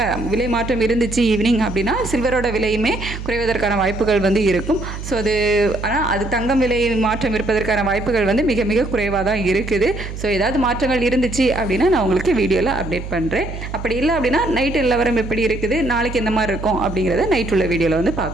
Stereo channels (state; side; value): noise; right; hum, 8 dB below the sound